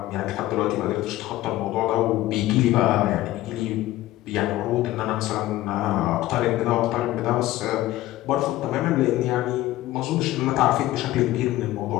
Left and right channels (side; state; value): right; quieter; 15.9 dB